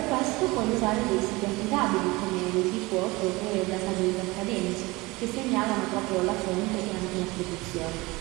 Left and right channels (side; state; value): left; quieter; 22.6 dB